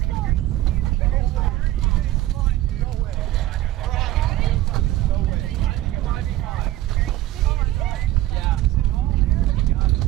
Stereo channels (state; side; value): quieter; left; 15.1 dB